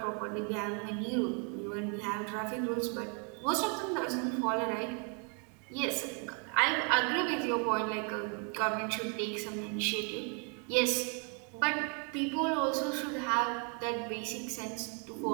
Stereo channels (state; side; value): quieter; left; 37.8 dB